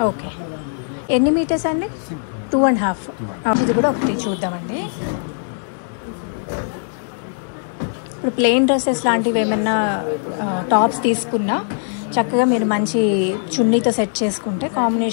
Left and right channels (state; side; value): silent; right; digital silence